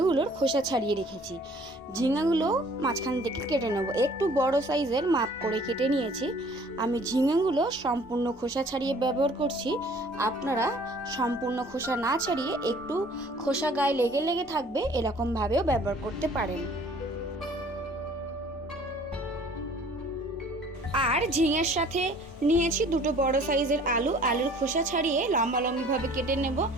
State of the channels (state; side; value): normal; both; correlation 0.53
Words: খোসা ছাড়িয়ে রেখেছি। ঝিঙেগুলো মাঝখান থেকে কেটে নেব। একটু বড় সাইজের মাপ করে কেটে নিয়েছি। আমি ঝিঙেগুলো সম্পূর্ণ খোসা ছাড়িয়ে ব্যবহার করছি। আপনারা সম্পূর্ণ খোসা না ছাড়িয়ে একটু খোসা গায়ে লেগে লেগে থাকবে এরকমভাবেও ব্যবহার করতে পারেন। আর ঝিঙের সাথে নিয়েছি দুটো বড় সাইজের আলুর খোসা ছাড়িয়ে লম্বা লম্বিভাবে কেটে নেব।